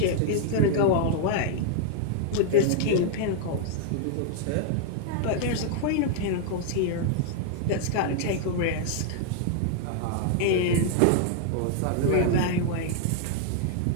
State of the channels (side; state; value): both; different; correlation -0.01